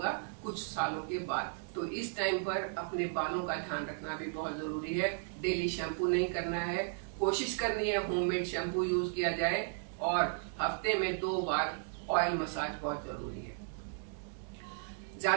कुछ सालों के बाद। तो इस टाइम पर अपने बालों का ध्यान रखना भी बहुत जरूरी है। डेली शैम्पू नहीं करना है, कोशिश करनी है होममेड शैम्पू यूज किया जाए और हफ्ते में 2 बार ऑयल मसाज बहुत जरूरी है।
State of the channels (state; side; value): silent; left; digital silence